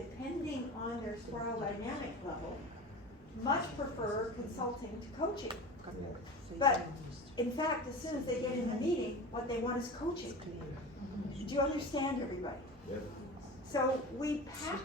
on their spiral dynamic level, much prefer consulting to coaching. But in fact, as soon as they get in the meeting, what they want is coaching. Do you understand, everybody? Yep. So we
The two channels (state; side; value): normal; both; correlation 0.31